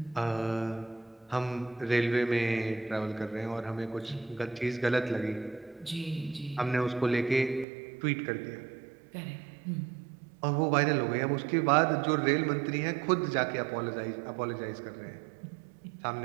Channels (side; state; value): left; drops out; at 7.7 s